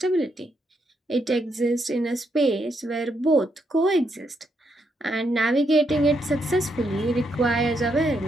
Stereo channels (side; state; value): both; normal; correlation 0.78